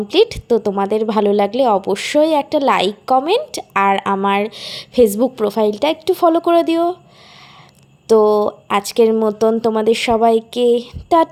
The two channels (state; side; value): identical; both; correlation 1.00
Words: তো তোমাদের ভালো লাগলে অবশ্যই একটা লাইক কমেন্ট আর আমার ফেসবুক প্রোফাইলটা একটু ফলো করে দিও। তো আজকের মতন তোমাদের সবাইকে